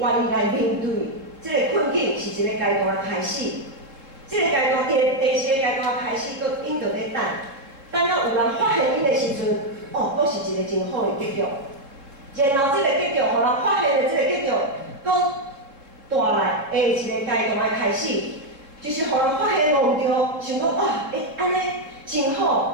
来面对即个困境，是一个阶段的开始。即个阶段第二个阶段开始，搁因就咧等。等到有人发现因的时阵，搁是一个真好的结局。然后这个结局，互人发现的这个结局，搁带来下一个阶段的开始，就是互人发现无着，想讲安尼真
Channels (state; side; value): late; left; 3.7 ms